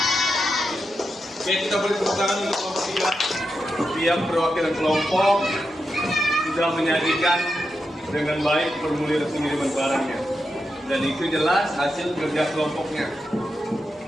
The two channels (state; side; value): normal; both; correlation 0.87